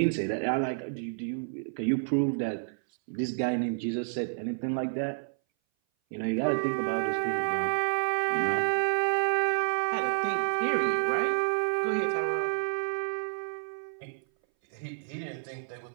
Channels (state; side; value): silent; left; 58 dB below the other